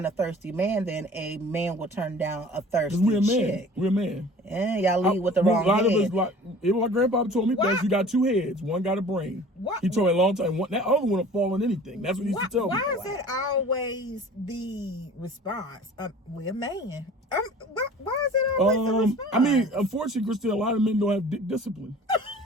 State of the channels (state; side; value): normal; both; correlation 0.45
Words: a thirsty man than a man will turn down a thirsty We're a man. chick. We're a man. And y'all lead with the wrong A lot head. of us, like, even my grandpa told me, that you got 2 heads. One got a brain. What? He told me a long time. That other one will fall on anything. That's what he used to tell me. Why is that always the response? We're a man. Why is it always the response? I mean, unfortunately, Christine, a lot of men don't have dick discipline.